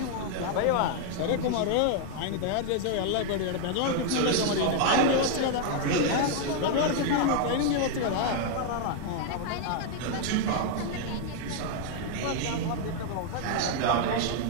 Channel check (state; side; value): different; both; correlation 0.00